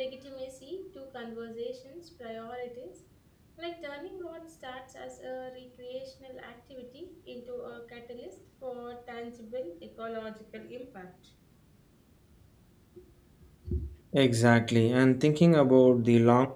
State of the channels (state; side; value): identical; both; correlation 1.00